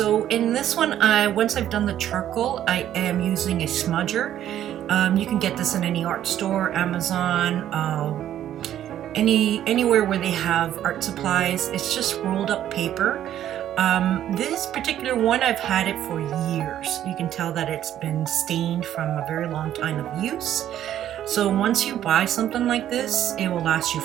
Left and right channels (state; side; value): quieter; left; 11.4 dB